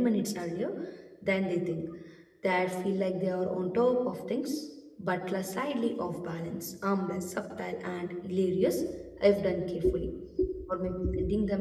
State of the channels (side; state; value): both; identical; correlation 1.00